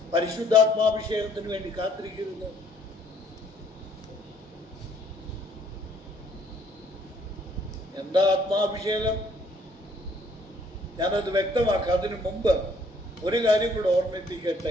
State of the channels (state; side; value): normal; both; correlation 0.63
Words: പരിശുദ്ധാത്മാഭിഷേകത്തിന് വേണ്ടി കാത്തിരിക്കരുത്. എന്താ ആത്മാഭിഷേകം? ഞാനത് വ്യക്തമാക്കാം. അതിനു മുമ്പ് ഒരു കാര്യം കൂടെ